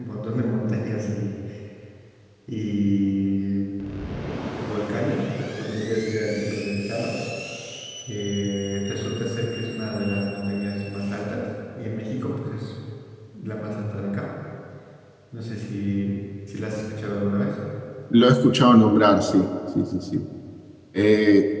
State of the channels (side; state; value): both; identical; correlation 1.00